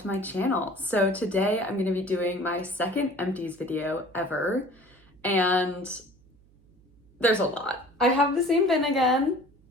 to my channel. So today I'm going to be doing my second Empties video ever, and there's a lot. I have the same bin again,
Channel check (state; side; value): noise; right; hum, 30 dB below the sound